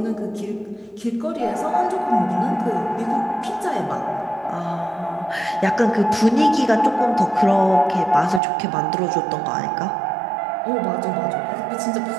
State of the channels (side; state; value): left; drops out; at 8.4 s